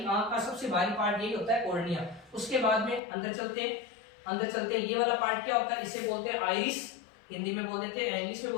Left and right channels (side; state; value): right; drops out; at 3.0 s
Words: आंख का सबसे बाहरी पार्ट यही होता है कॉर्निया। उसके बाद में अंदर चलते ये वाला पार्ट क्या होता है? इसे बोलते हैं आइरिस, हिंदी में बोल देते हैं, इंग्लिश में